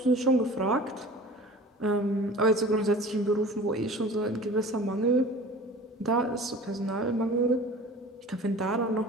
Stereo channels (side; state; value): both; normal; correlation 0.41